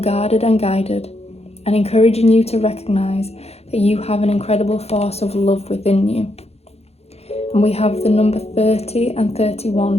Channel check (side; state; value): right; late; 0.30 ms